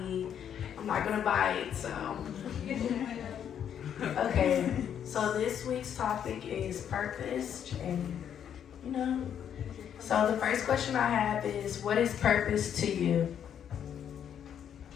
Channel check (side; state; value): right; quieter; 9.0 dB